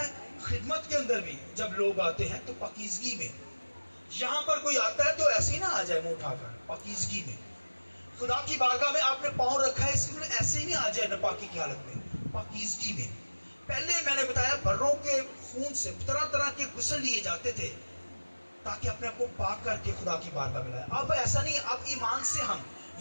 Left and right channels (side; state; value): both; inverted; correlation -1.00